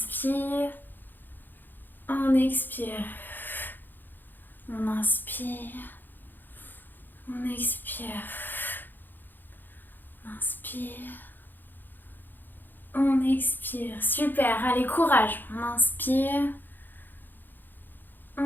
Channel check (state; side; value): late; right; 0.090 ms